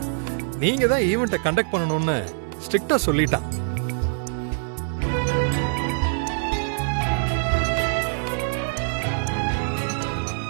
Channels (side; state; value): left; silent; 63 dB below the other